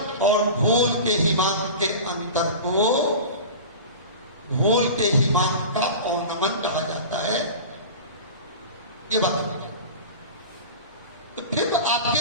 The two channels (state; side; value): inverted; both; correlation -0.33